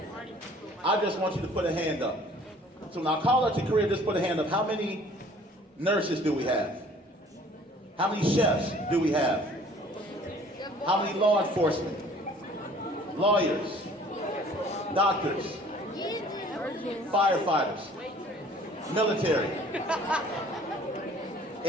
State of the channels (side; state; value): both; normal; correlation 0.53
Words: I just want you to put a hand up. So when I call out your career, just put a hand up. How many nurses do we have? How many chefs do we have? How many law enforcement? Lawyers? Doctors? Firefighters? Military?